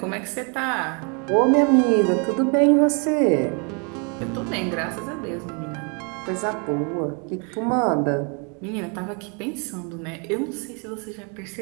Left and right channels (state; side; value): quieter; left; 37.1 dB